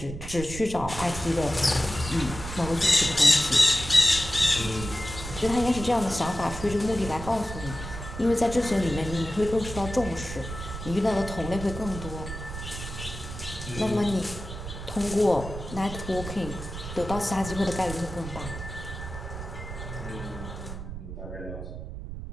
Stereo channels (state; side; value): noise; right; rumble, 9 dB below the sound